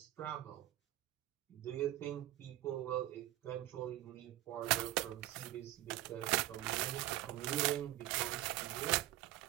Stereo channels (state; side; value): quieter; left; 14.9 dB